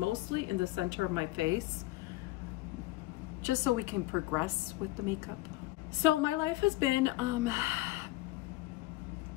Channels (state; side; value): quieter; right; 18.4 dB